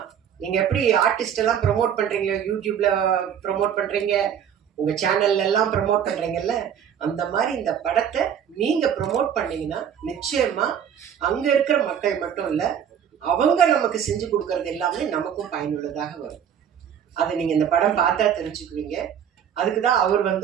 நீங்க எப்படி ஆர்டிஸ்ட் எல்லாம் ப்ரொமோட் பண்றீங்க, யூடியூப்ல ப்ரொமோட் பண்றீங்க, உங்க சேனல்ல எல்லாம் ப்ரொமோட் பண்றீங்கல்ல, அந்த மாதிரி இந்த படத்தை நீங்க ப்ரொமோட் பண்ணீங்கன்னா நிச்சயமா அங்க இருக்கிற மக்கள் மட்டும் இல்ல, அவங்க நமக்கு செஞ்சு கொடுக்கறது எல்லாமே நமக்கும் பயனுள்ளதாக வரும். அதை நீங்க இந்த படம் பார்த்தா தெரிஞ்சுக்குவீங்க. அதுக்குதான் அவர்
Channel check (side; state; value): left; quieter; 8.7 dB